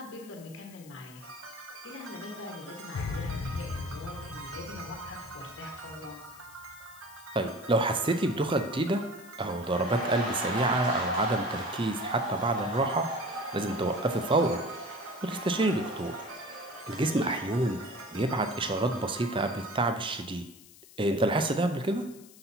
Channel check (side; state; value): left; noise; hiss, 21 dB below the sound